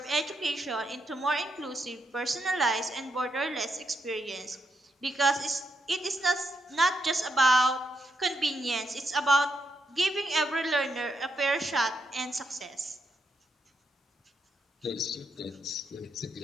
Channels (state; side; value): normal; both; correlation 0.80